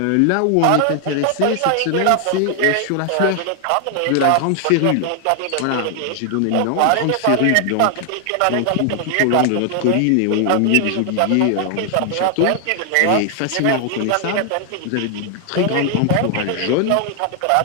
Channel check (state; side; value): different; both; correlation 0.00